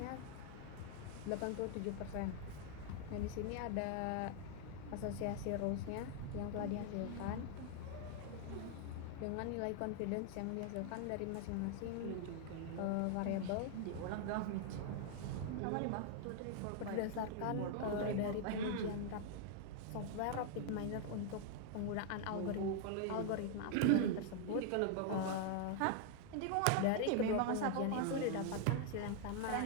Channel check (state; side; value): different; both; correlation 0.00